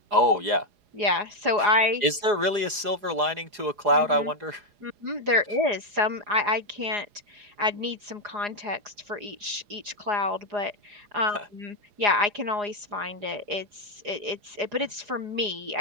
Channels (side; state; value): left; late; 4.8 ms